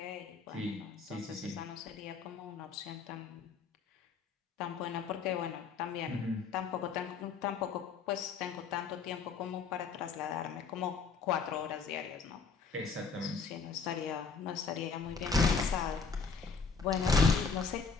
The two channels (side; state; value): right; quieter; 5.3 dB